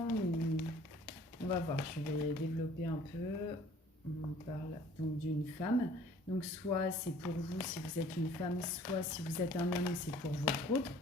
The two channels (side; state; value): both; normal; correlation 0.53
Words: On va voir, je vais développer un peu. On parle donc d'une femme. Donc soit c'est pour vous si vous êtes une femme, soit si vous êtes un homme, c'est pour votre autre.